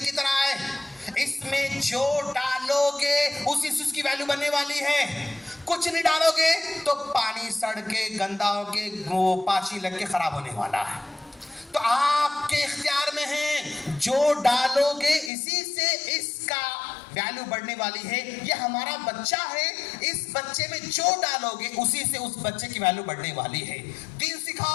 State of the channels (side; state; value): right; drops out; at 15.3 s